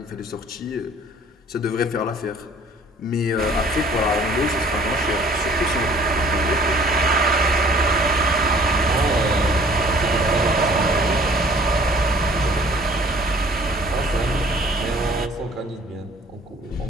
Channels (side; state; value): both; normal; correlation 0.54